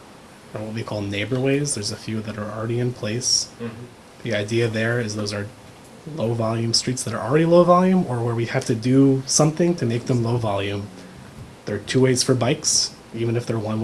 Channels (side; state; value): both; identical; correlation 1.00